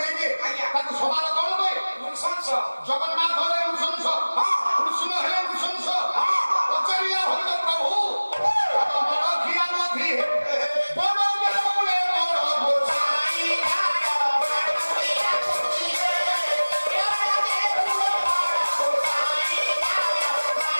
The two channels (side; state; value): both; inverted; correlation -1.00